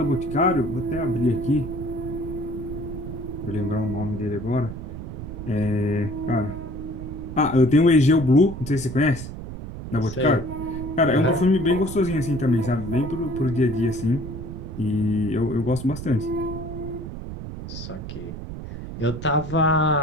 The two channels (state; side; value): noise; right; rumble, 9 dB below the sound